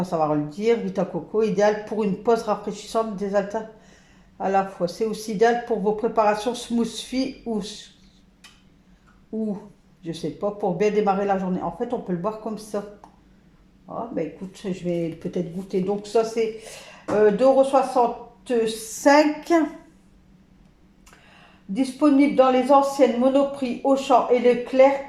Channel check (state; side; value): identical; both; correlation 1.00